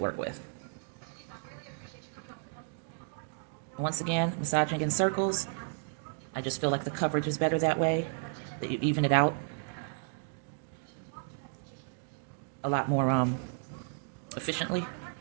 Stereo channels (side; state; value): left; silent; digital silence